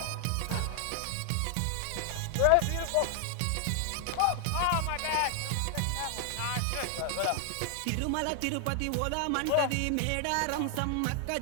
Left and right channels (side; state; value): both; different; correlation 0.00